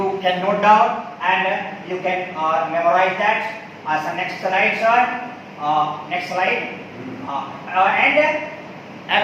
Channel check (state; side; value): identical; both; correlation 1.00